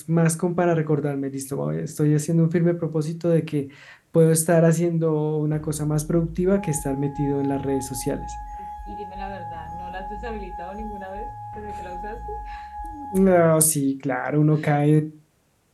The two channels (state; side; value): identical; both; correlation 1.00